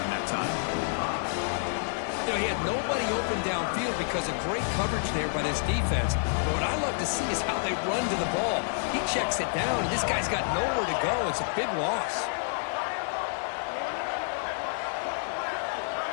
that time. You know, he had nobody open downfield because of great coverage there by this defense. But what I love to see is how they run to the ball. He checks it down, and this guy's got nowhere to go. It's a big loss.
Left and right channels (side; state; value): right; silent; 55 dB below the other